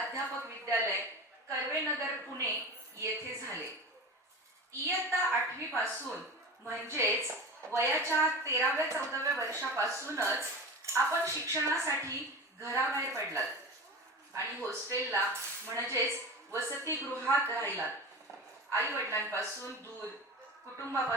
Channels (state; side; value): normal; both; correlation 0.30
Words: विद्यालय कर्वे नगर पुणे येथे झाले. इयत्ता 8वी पासून म्हणजेच वयाच्या 13व्या 14व्या वर्षापासूनच आपण शिक्षणासाठी घराबाहेर पडलात आणि हॉस्टेलला म्हणजेच वसतिगृहात राहिलात. आई वडिलांपासून दूर,